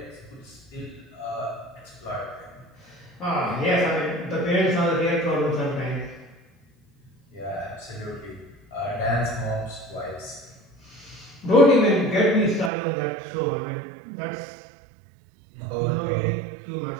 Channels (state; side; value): drops out; left; at 12.7 s